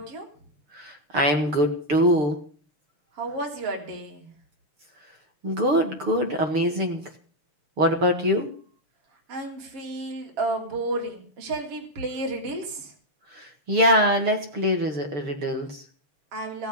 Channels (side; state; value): left; late; 6.7 ms